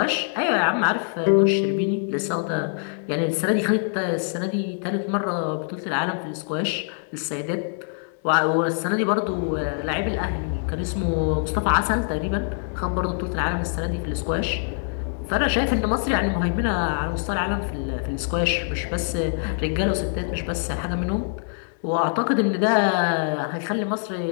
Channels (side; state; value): right; silent; digital silence